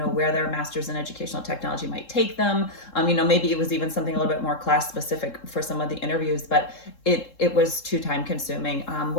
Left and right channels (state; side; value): late; right; 3.7 ms